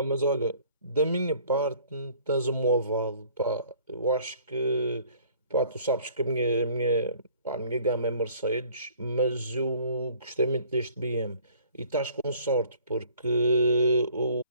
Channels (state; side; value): inverted; both; correlation -0.54